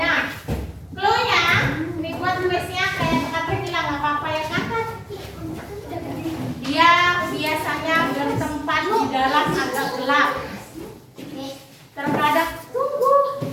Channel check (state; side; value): identical; both; correlation 1.00